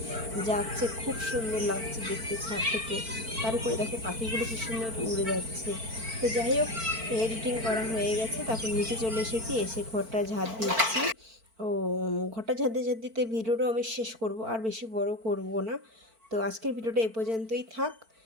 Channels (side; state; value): left; late; 4.5 ms